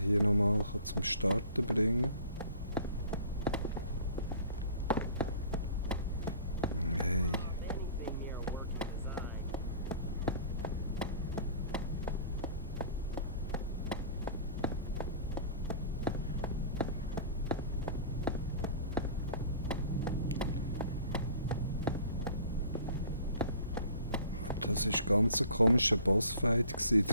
nochmal zum Starten bringen kann. Hey. Das war ganz ein komischer Bossfight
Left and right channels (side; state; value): both; inverted; correlation -0.46